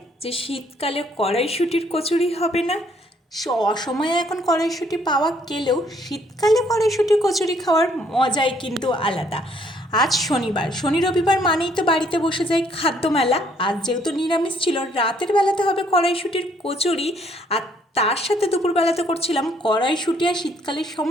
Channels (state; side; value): normal; both; correlation 0.66